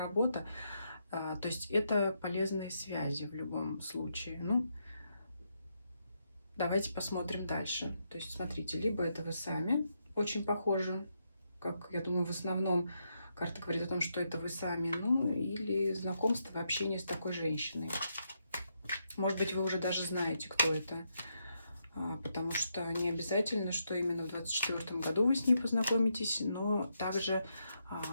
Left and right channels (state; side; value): inverted; both; correlation -0.80